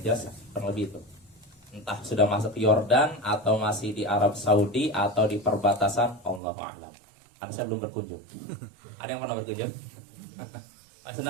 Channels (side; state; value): left; drops out; at 6.4 s